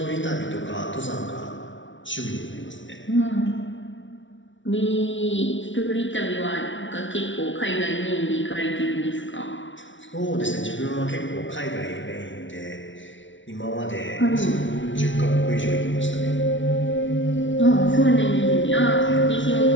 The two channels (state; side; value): late; right; 0.56 ms